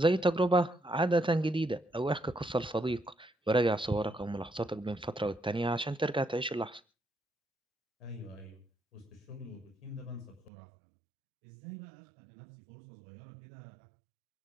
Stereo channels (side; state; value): left; drops out; at 10.5 s